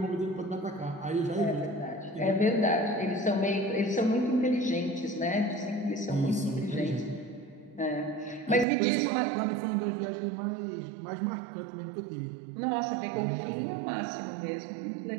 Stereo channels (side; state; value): left; drops out; at 8.7 s